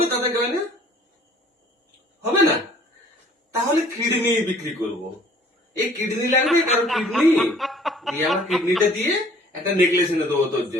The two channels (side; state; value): both; normal; correlation 0.54